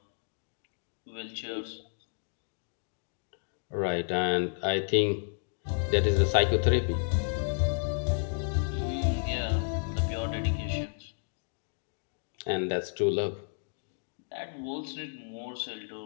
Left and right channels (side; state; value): right; silent; digital silence